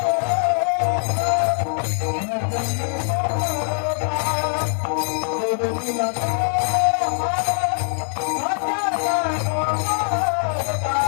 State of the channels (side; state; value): right; silent; digital silence